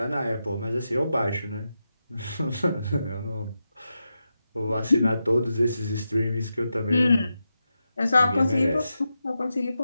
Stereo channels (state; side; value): inverted; both; correlation -0.89